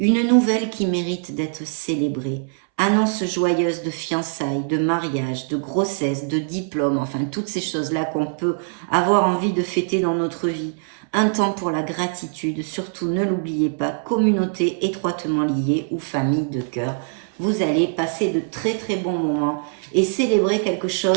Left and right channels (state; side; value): silent; left; 64 dB below the other